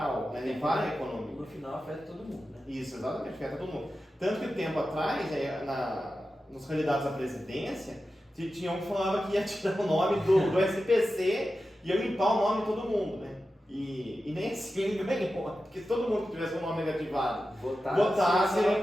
né? Para a economia. No final afeta todo mundo, né? Isso, exatamente, afeta todo mundo. Tanto que tempo atrás, nos candidatos à presidência, tinha um que falava que ia tirar o nome do SPC e ia limpar o nome de todo mundo, né? E nem assim ele ganhou, porque se todo mundo que tivesse um nome negativado votasse,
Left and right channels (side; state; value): both; normal; correlation 0.92